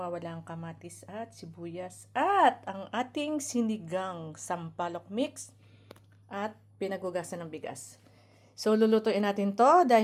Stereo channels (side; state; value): both; identical; correlation 1.00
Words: ang kamatis at sibuyas. At ang ating sinigang sampalok mix at pinagugasan ng bigas. So, lulutuin natin to